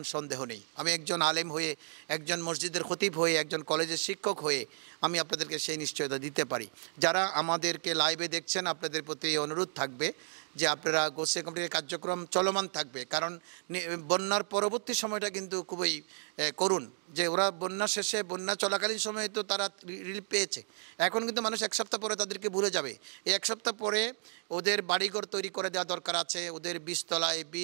সন্দেহ নেই। আমি একজন আলেম হয়ে, একজন মসজিদের খতিব হয়ে, একজন কলেজের শিক্ষক হয়ে আমি আপনাদেরকে সেই নিশ্চয়তা দিতে পারি। যারা আমাদেরকে লাইভে দেখছেন, আপনাদের প্রতি অনুরোধ থাকবে যে আপনারা গৌসে কমিটির কার্যক্রম চলমান থাকবে, কারণ বন্যার পরবর্তী সময়টা কিন্তু খুবই করুণ। যে ওরা বন্যা শেষে, বন্যা চলাকালীন সময়ে তো তারা রিলিফ পেয়েছে, এখন কিন্তু মানুষ এক সপ্তাহ পরে তাদেরকে ভুলে যাবে। এই এক সপ্তাহ পরে ওদের বাড়িঘর তৈরি করে দেওয়া দরকার আছে, ওদের বীজতলায়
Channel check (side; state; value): left; silent; digital silence